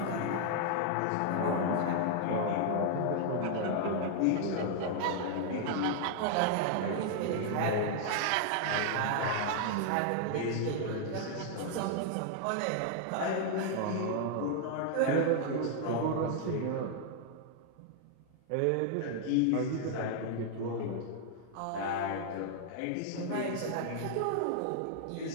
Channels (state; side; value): different; both; correlation 0.00